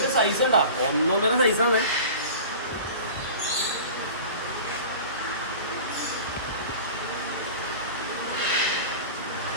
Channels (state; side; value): inverted; both; correlation -0.38